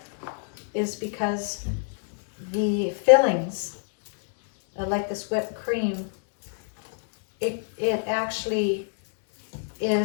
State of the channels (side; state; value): right; silent; digital silence